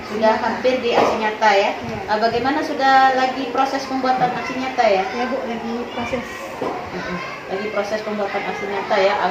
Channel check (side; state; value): both; identical; correlation 1.00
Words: sudah hampir di aksi nyata ya. Bagaimana sudah lagi proses pembuatan aksi nyata ya? Ya Bu, lagi proses. Lagi proses pembuatan aksi nyata ya.